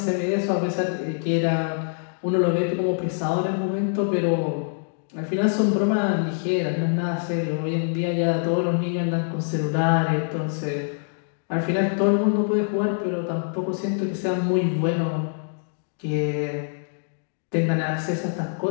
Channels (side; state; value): right; silent; digital silence